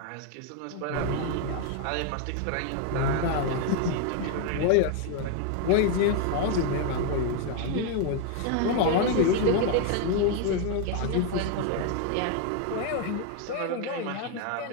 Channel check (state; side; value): different; both; correlation 0.01